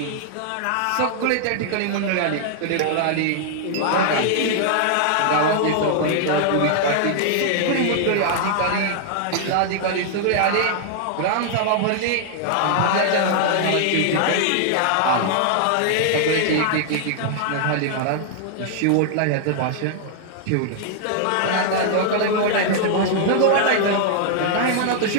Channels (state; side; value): different; both; correlation -0.01